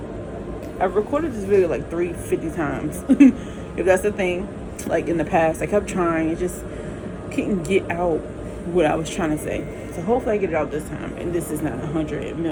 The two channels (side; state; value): both; identical; correlation 1.00